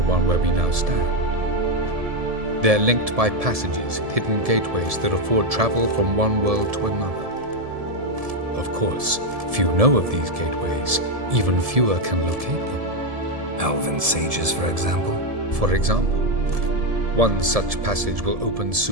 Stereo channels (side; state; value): left; late; 1.7 ms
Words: one where we now stand. They're linked by passages, hidden gateways that afford travel from one world to another. Of course, few know of these gateways, even fewer can locate them. Elven sages, for example? For example. One such passage will open